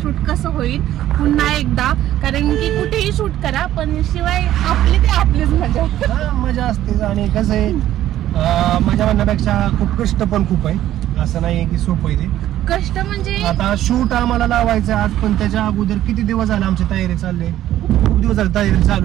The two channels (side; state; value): left; quieter; 13.0 dB